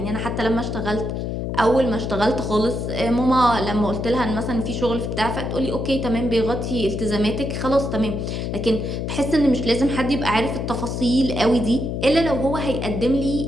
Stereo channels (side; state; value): left; noise; hum, 3 dB below the sound